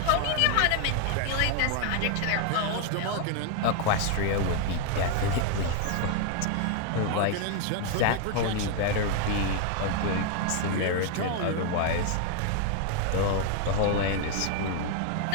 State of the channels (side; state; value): both; different; correlation 0.00